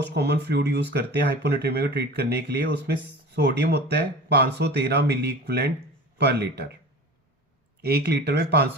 कॉमन फ्लूइड यूज करते हैं हाइपोनेट्रीमिया को ट्रीट करने के लिए, उसमें सोडियम होता है 513 मिली इक्विवेलेंट पर लीटर। 1 लीटर में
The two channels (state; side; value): normal; both; correlation 0.37